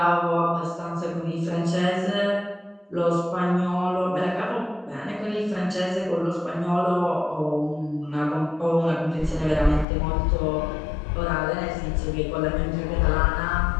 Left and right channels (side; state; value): right; drops out; at 9.9 s